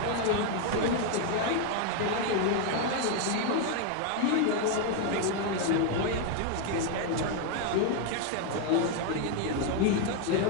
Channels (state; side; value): different; both; correlation 0.01